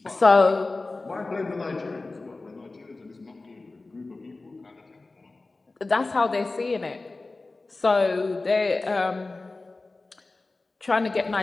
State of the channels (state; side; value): quieter; right; 3.4 dB